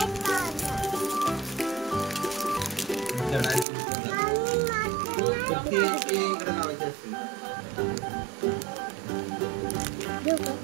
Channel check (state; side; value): drops out; left; at 3.7 s